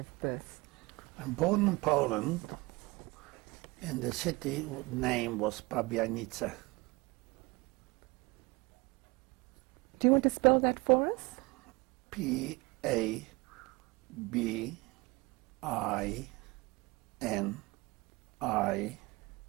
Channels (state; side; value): quieter; left; 24.2 dB